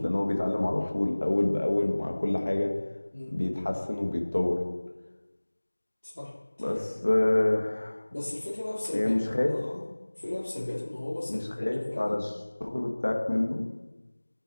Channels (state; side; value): inverted; both; correlation -1.00